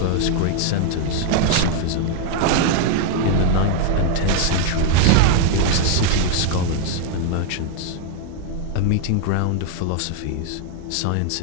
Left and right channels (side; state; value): both; different; correlation 0.00